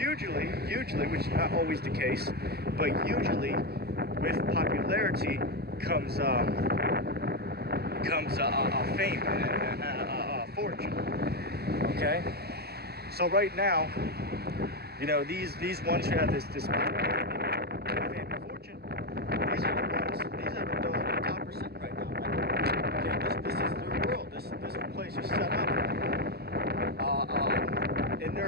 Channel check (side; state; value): left; late; 0.46 ms